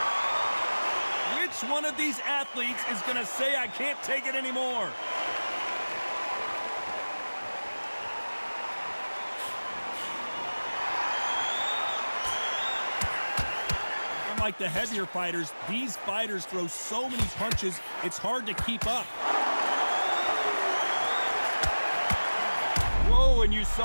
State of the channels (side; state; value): both; inverted; correlation -1.00